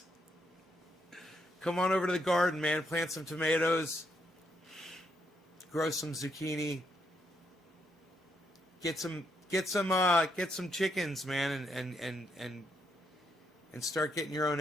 Come on over to the garden, man. Plant some tomatoes. Grow some zucchini. Get some chickens, man, and start getting your own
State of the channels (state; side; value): normal; both; correlation 0.77